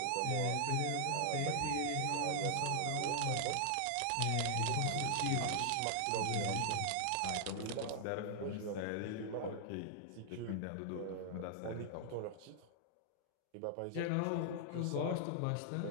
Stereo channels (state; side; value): different; both; correlation -0.01